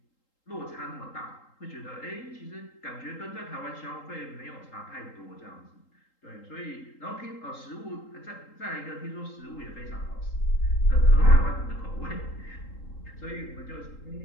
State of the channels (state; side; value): late; right; 3.8 ms